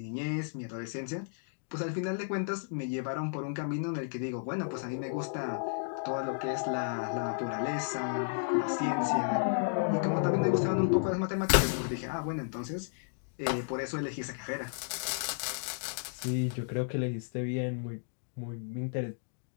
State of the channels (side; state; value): right; silent; digital silence